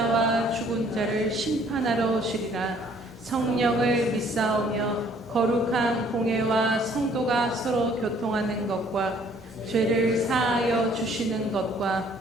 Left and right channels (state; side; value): normal; both; correlation 0.60